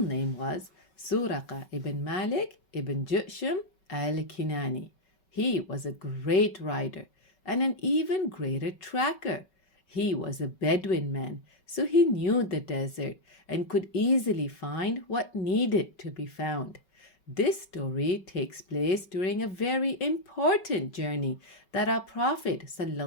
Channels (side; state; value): right; late; 5.3 ms